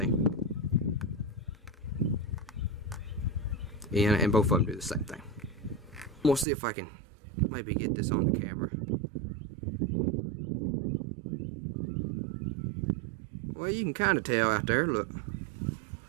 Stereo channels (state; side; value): drops out; left; at 6.5 s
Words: And both of them do the same thing. We'll see if I can maybe get this on the camera. Well, you can kind of tell out there, look.